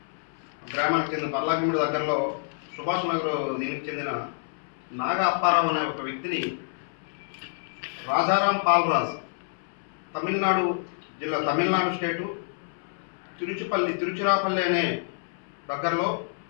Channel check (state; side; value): silent; right; 60 dB below the other